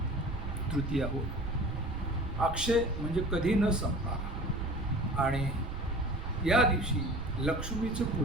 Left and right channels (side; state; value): right; noise; rumble, 7 dB below the sound